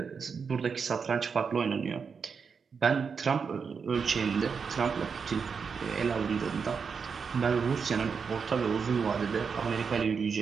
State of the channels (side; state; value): left; quieter; 5.8 dB